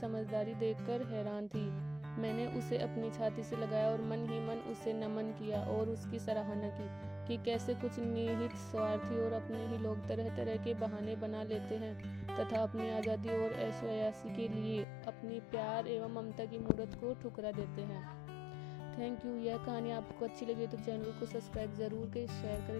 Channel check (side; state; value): right; drops out; at 14.9 s